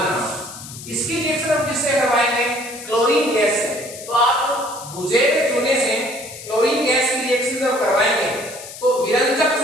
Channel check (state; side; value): noise; left; hiss, 13 dB below the sound